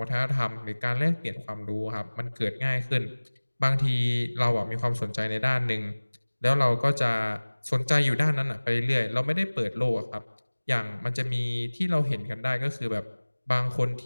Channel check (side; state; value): both; inverted; correlation -1.00